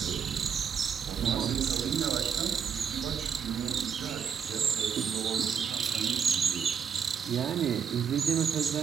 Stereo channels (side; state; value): left; quieter; 7.3 dB